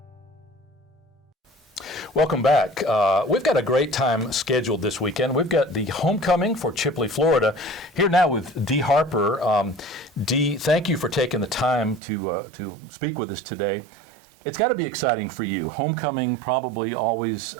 Welcome back. We've got a great time scheduled this weekend. We've got the homecoming for Chipley, Florida. Here now with Dee Harper. Dee, thank you for taking the time to speak with us today. It's got to be exciting for you. Homecoming probably always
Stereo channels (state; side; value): drops out; left; at 12.0 s